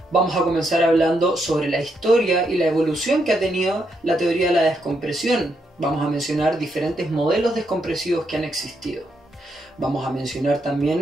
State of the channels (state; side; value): normal; both; correlation 0.79